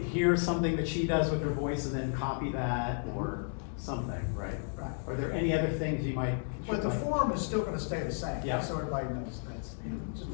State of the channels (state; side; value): silent; right; 56 dB below the other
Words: hear something that she does with her voice and then copy that or something, right? Right. Are there any other things you might? But the form is still gonna stay the same. Yeah. So everybody knows that's, it's a